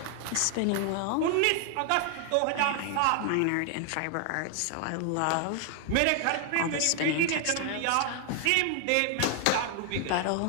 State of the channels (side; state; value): both; different; correlation 0.00